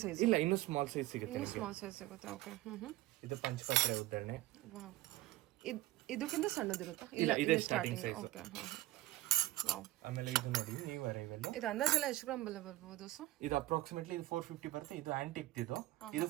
ಸೈಜ್. ಇಲ್ಲ, ಇನ್ನು ಸ್ಮಾಲ್ ಸೈಜ್ ಸಿಗುತ್ತೆ. ಸ್ಮಾಲ್ ಸೈಜ್ ಸಿಗುತ್ತೆ. ಓಕೆ. ಇದು ಪಂಚಪಾತ್ರೆ ಉದ್ದರಣೆ. ವಾವ್, ಇದಕ್ಕಿಂತ ಸಣ್ಣದಿರುತ್ತಾ? ಇಲ್ಲ, ಇದೇ ಸ್ಟಾರ್ಟಿಂಗ್ ಸೈಜ್. ಓಕೆ. ಆಮೇಲೆ ಇದು ನೋಡಿ, ನೀವು ಅರೈವಲ್. ಇದು ಅಂದಾಜೆಲ್ಲ ಎಷ್ಟು ಗ್ರಾಮ್ ಬರ್ಬೋದು ಸರ್? ಇದು ಅಪ್ರಾಕ್ಸಿಮೇಟ್ಲಿ ಇದು 450 ಬರುತ್ತೆ. ಇದು ಆಂಟಿಕ್. ಇದು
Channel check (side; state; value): left; quieter; 16.7 dB